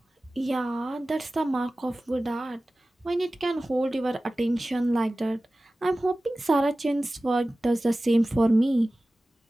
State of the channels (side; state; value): both; normal; correlation 0.97